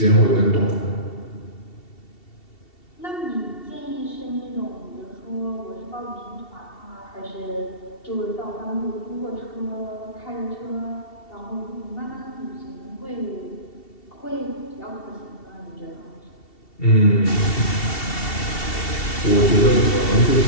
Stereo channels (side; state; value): right; late; 2.7 ms